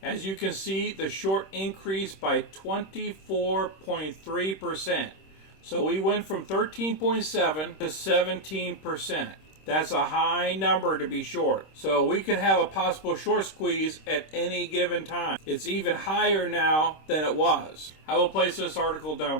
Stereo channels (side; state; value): right; late; 26 ms